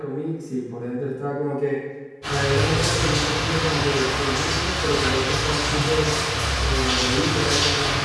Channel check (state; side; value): identical; both; correlation 1.00